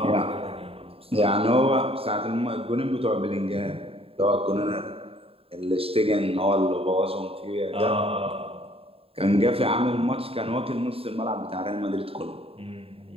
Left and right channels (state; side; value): late; left; 0.27 ms